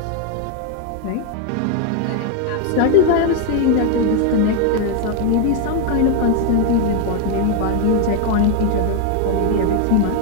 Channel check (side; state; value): both; different; correlation 0.01